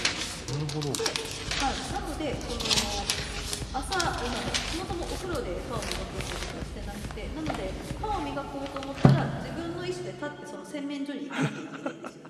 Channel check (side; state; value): both; identical; correlation 1.00